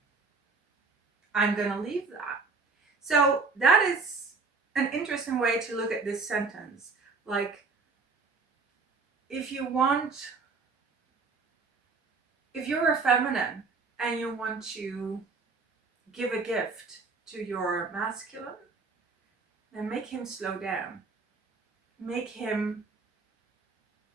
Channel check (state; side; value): quieter; left; 4.3 dB